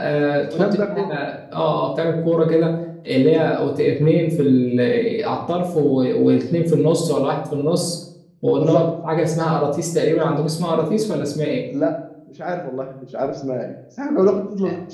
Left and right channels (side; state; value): both; identical; correlation 1.00